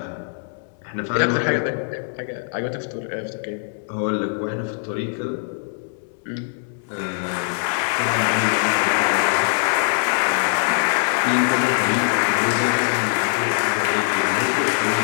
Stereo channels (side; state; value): right; silent; digital silence